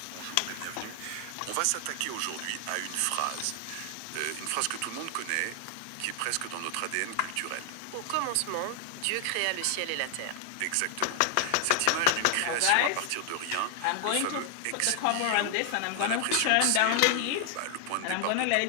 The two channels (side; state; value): both; different; correlation 0.00